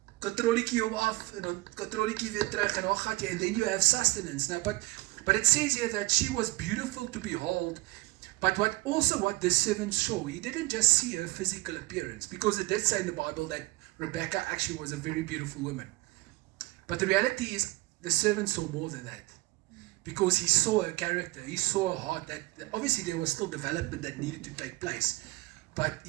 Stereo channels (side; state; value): left; quieter; 21.5 dB